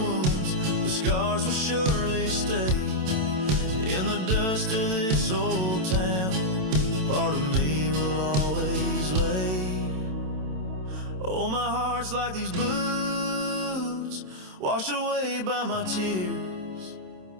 but scars will surely stay. In the dust of this old town, part of me will always lay. Oh, my heart's like these boots washed away by my tears,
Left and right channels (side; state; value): left; late; 27 ms